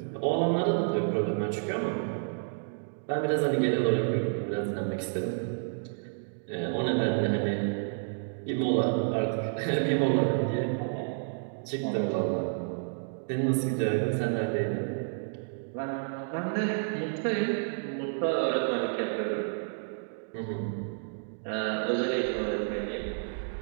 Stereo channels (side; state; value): left; silent; digital silence